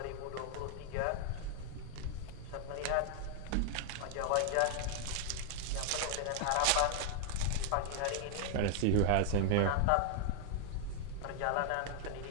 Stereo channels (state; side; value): different; both; correlation 0.00